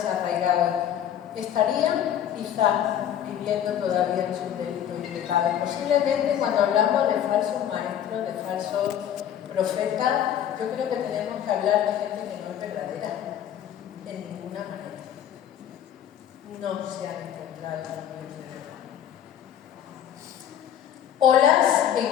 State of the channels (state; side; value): quieter; right; 10.1 dB